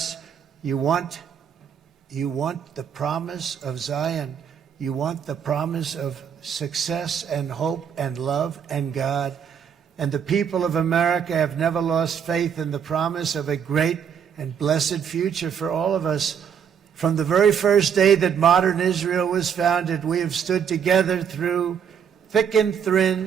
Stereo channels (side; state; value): left; quieter; 7.7 dB